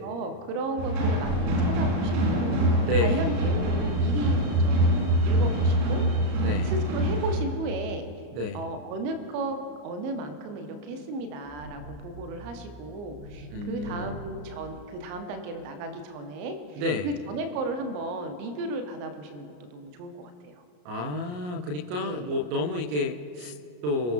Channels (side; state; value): left; late; 34 ms